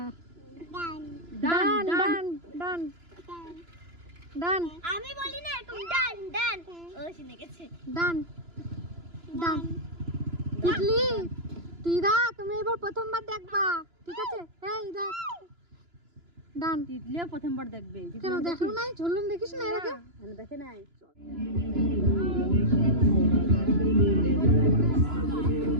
ডান ডান ডান ডান ডান আমি বলি না এরকম ডান ডান, ও শুনে গেছে। ডান ডান। তিতলি, তিদা তুমি এবার প্রথমবার দেখবা, ঠিক আছে? এই দেখ, ডান। তিতলিও প্রথমবার দেখবে। কেন দেখো নাই? ঝুলন দেখিস না এর আগে? দেখে নাই।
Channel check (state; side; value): late; left; 2.9 ms